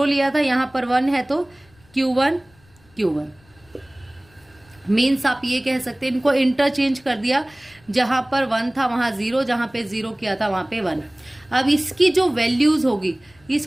लिया था, यहां पर 1 है तो Q1 मीन्स आप ये कह सकते हैं इनको इंटरचेंज कर दिया, जहां पर 1 था वहां 0, जहां पे 0 किया था वहां पे 1। अब इसकी जो वैल्यूज होगी,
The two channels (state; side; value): noise; left; rumble, 30 dB below the sound